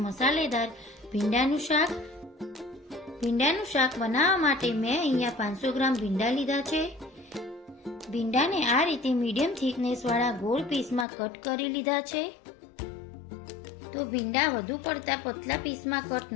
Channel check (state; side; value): drops out; right; at 11.1 s